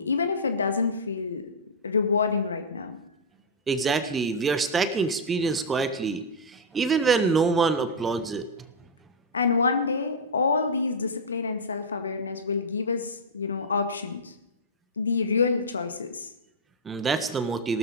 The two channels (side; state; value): both; normal; correlation -0.05